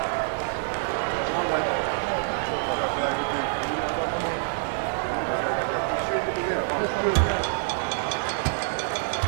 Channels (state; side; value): silent; left; 58 dB below the other